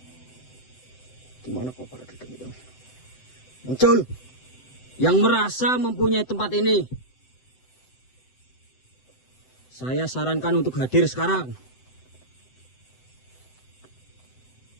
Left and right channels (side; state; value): right; late; 7.9 ms